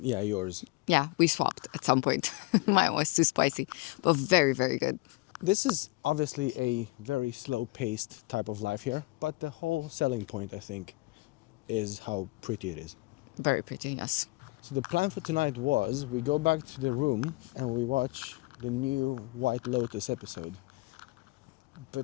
Yeah, yours. Yeah, we swapped at some point. Mine was too spicy, but very, very good. This is obviously a very slow-paced type of life here, but the whole selling point, I think, is how pretty it is. Very pretty, yes. So the plan for tonight was we go back to the room and we watch the new White Lotus episode.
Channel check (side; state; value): right; quieter; 23.4 dB